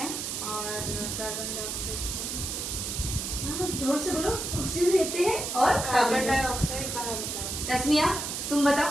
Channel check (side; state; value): right; noise; hiss, 4 dB below the sound